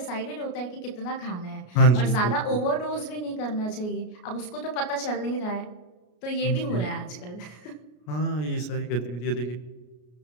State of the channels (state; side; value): late; right; 33 ms